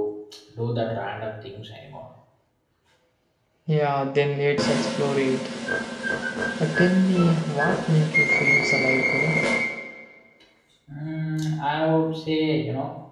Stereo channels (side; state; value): both; identical; correlation 1.00